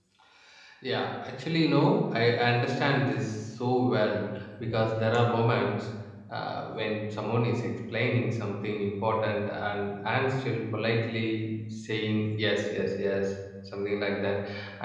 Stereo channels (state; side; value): identical; both; correlation 1.00